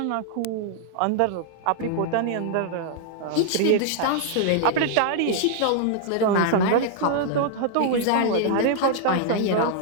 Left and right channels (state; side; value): different; both; correlation -0.01